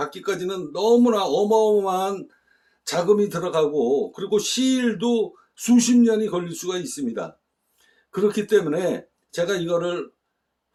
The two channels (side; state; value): both; identical; correlation 1.00